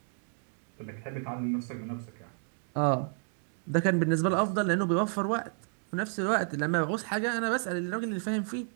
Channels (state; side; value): silent; left; 57 dB below the other